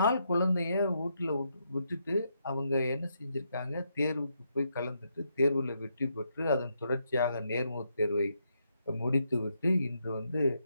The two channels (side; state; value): both; inverted; correlation -0.79